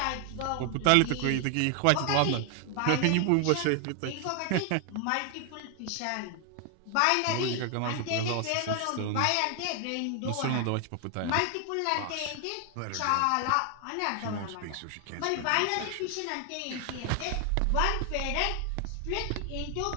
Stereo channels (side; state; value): both; different; correlation 0.00